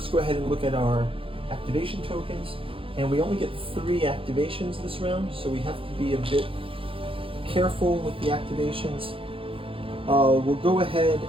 go ahead and look at our activation tokens. And we only get 3 activations this round, so we have to be a bit careful with the activations. We'll go ahead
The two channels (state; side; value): late; left; 0.26 ms